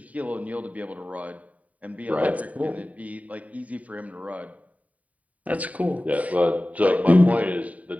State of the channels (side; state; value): left; late; 0.070 ms